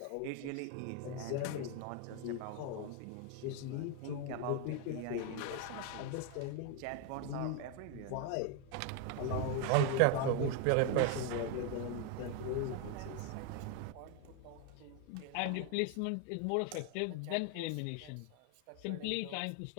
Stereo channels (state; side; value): different; both; correlation 0.01